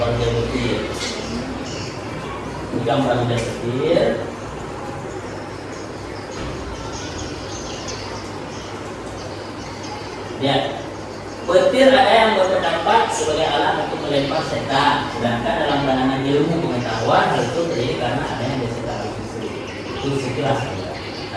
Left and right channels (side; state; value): both; identical; correlation 1.00